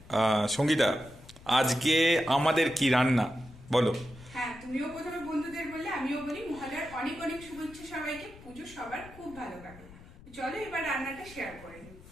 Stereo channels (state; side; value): noise; left; rumble, 19 dB below the sound